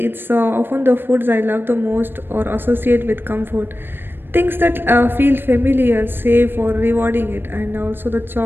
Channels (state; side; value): late; left; 0.099 ms